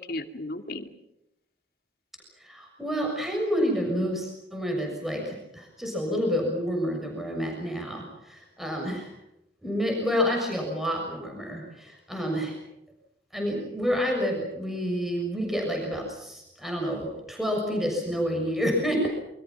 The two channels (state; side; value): normal; both; correlation 0.57